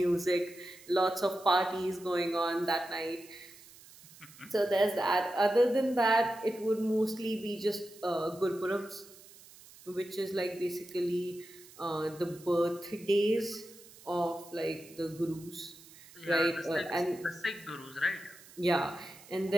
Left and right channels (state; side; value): noise; right; hiss, 21 dB below the sound